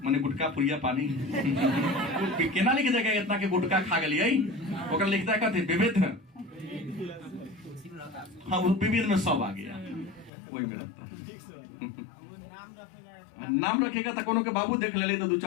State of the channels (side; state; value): right; drops out; at 10.3 s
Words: गुटका पुरिया पानी केना लिख देगा इतना के गुटका खा गलिए, ओकरा लिखता है कथी, विविध। हाँ, वो विविध में सब आ गया, वही में रहता है। नाम रखेगा तो कोनो के बाबू देख ले तो